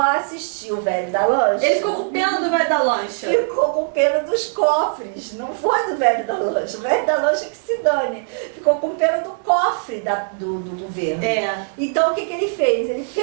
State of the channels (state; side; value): silent; left; digital silence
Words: assistir o velho da lancha. Ele ficou com pena do velho da lancha. Ficou com pena dos cofres, não foi do velho da lancha. O velho da lancha que se dane. Ficou com pena do cofre do governo. Então, o que ele fez? Ele